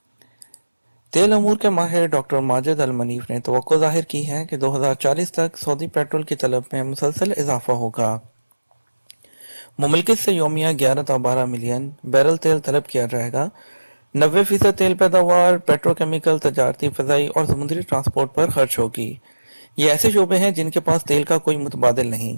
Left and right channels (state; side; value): inverted; both; correlation -1.00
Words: तेल अमूर के माहिर डॉक्टर माजिद अल मनीफ ने तवक्को ज़ाहिर की है कि 2040 तक सऊदी पेट्रोल की तलब में मुसलसल इजाफा होगा। मुमलिकत से योमिया 11 से 12 मिलियन बैरल तेल तलब किया जाएगा। 90% तेल पैदावार पेट्रोकेमिकल, तजारती, फ़ज़ाई और समुद्री ट्रांसपोर्ट पर खर्च होगी। ये ऐसे शोबे हैं जिनके पास तेल का कोई मुतबादिल